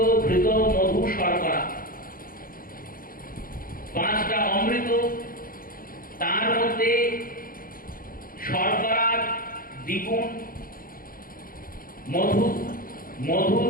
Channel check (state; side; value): late; right; 0.41 ms